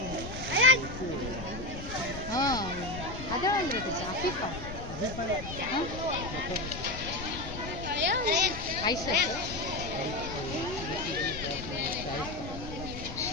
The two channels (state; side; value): noise; left; rumble, 9 dB below the sound